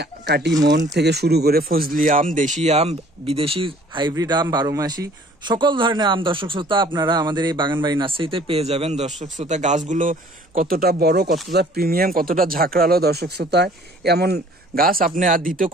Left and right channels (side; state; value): both; normal; correlation 0.54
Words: কাটিমন থেকে শুরু করে ফজলি আম, দেশি আম, বিদেশি হাইব্রিড আম, 12 মাসি সকল ধরনের আম দর্শক শ্রোতা আপনারা আমাদের এই বাগানবাড়ি নার্সারিতে পেয়ে যাবেন। দর্শক শ্রোতা, গাছগুলো কতটা বড়, কতটা প্রিমিয়াম, কতটা ঝাঁকড়ালো। দর্শক শ্রোতা, এমন গাছ আপনি আর দ্বিতীয়